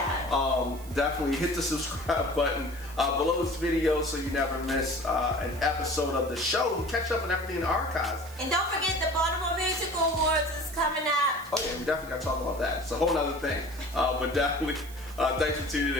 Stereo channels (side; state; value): right; noise; hiss, 19 dB below the sound